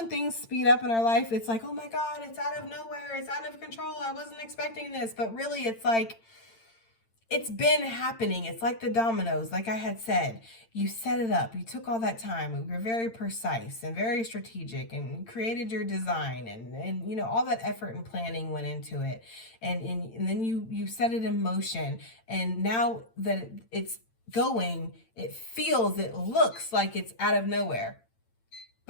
things speed up in our life, it's like, oh my God, it's out of nowhere. It's out of control. I wasn't expecting this. But really, it's like, it's been happening. It's like the dominoes, like I had said. You set it up. You took all that time. You were very precise and very strategic and created your design. And you know, all that effort and planning went into it. And then you set it in motion. And now that it's going, it feels, it looks like it's out of nowhere.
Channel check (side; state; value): right; late; 8.8 ms